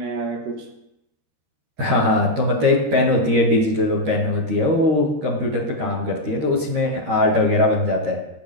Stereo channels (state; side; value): late; left; 13 ms